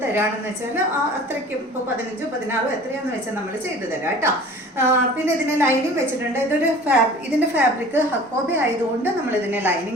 തരാണെന്ന് വെച്ചാൽ അത്രയ്ക്കും ഇപ്പോൾ 15 16 എത്രയാണെന്ന് വെച്ചാൽ നമ്മൾ ചെയ്തു തരാം കേട്ടോ. പിന്നെ ഇതിന് ലൈനിങ് വെച്ചിട്ടുണ്ട്. ഇതിൻ്റെ ഫാബ്രിക് ഹക്കോബി ആയതുകൊണ്ട് നമ്മൾ ഇതിനെ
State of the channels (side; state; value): both; normal; correlation 0.45